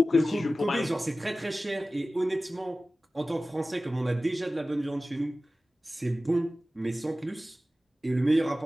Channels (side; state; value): both; normal; correlation 0.96